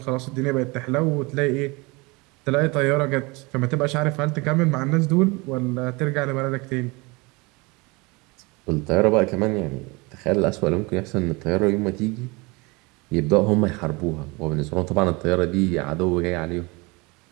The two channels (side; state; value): left; quieter; 26.0 dB